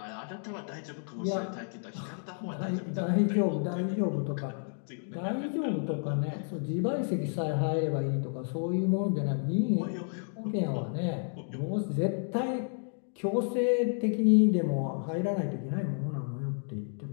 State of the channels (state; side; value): silent; right; 57 dB below the other